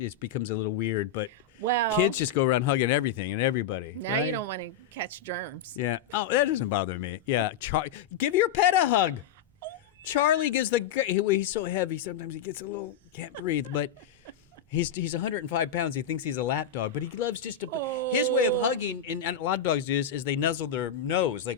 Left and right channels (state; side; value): quieter; right; 7.1 dB